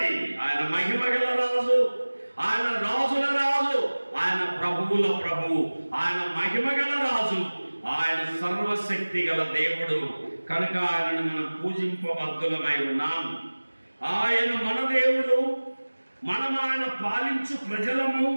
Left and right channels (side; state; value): both; inverted; correlation -1.00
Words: ఆయన మహిమ గల రాజు, ఆయన రాజుల రాజు, ఆయన ప్రభువుల ప్రభువు, ఆయన మహిమ గల రాజు, ఆయన సర్వశక్తి గల దేవుడు. కనుక ఆయనను మనం పూజింపబద్ధులమై ఉన్నాం. ఆయన మన దేవుడు, మనం ఆయన పాలించు ప్రజలము,